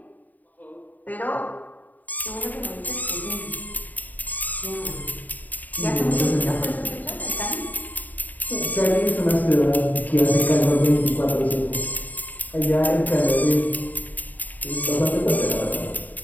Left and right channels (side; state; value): right; late; 0.081 ms